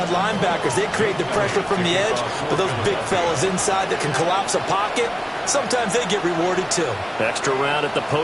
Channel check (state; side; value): identical; both; correlation 1.00